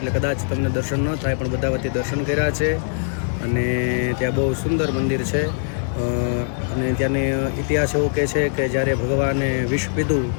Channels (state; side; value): silent; right; 63 dB below the other